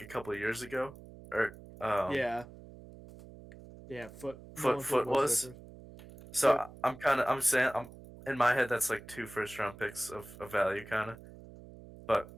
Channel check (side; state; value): right; noise; hum, 18 dB below the sound